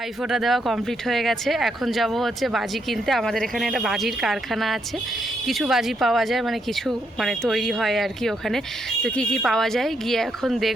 দেওয়া কমপ্লিট হয়ে গেছে, এখন যাব হচ্ছে বাজি কিনতে। আমাদের এখানে একটা বাজির কারখানা আছে, কিছু বাজি পাওয়া যায়, মানে কিছু মানে তৈরি হয় আর কি ওখানে। তো কি কি পাওয়া যায় গিয়ে এখন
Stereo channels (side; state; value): both; normal; correlation 0.78